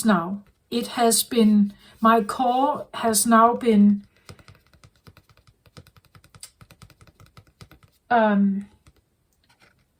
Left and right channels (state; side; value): identical; both; correlation 1.00